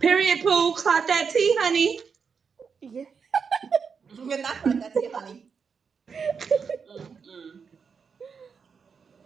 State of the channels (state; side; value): quieter; left; 6.0 dB